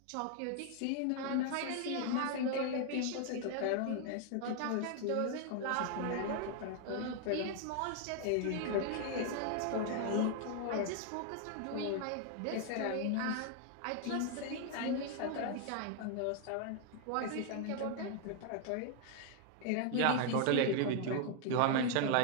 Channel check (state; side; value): different; both; correlation 0.00